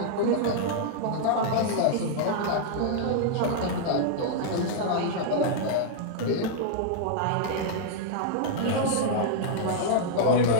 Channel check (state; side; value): different; both; correlation -0.01